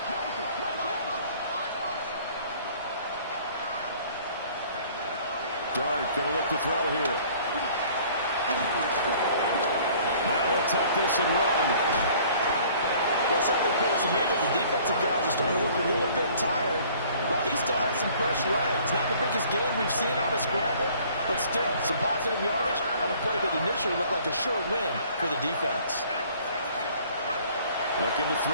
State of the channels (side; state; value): both; inverted; correlation -0.54